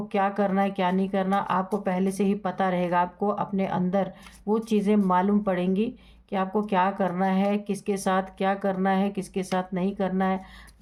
क्या करना है, क्या नहीं करना, आपको पहले से ही पता रहेगा। आपको अपने अंदर वो चीज़ें मालूम पड़ेंगी कि आपको क्या करना है, किसके साथ क्या करना है, किसके साथ नहीं करना है।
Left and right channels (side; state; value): both; identical; correlation 1.00